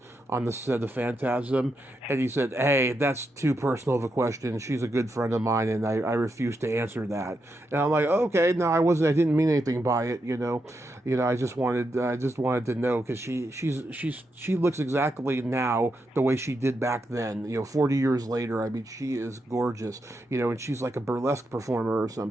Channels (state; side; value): normal; both; correlation 0.84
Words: the set of Phantasm? And he said, hey, that's too personal of a question. She's a good friend of mine, and I refuse to answer that. And I'm like, okay, no, I didn't mean anything by it, I just wanted to know, because she looks exactly now the way she did back then, 40 years later. I mean, she is gorgeous, and she's like a burlesque performer or